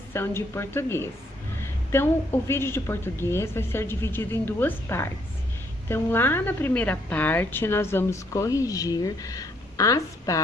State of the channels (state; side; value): normal; both; correlation 0.69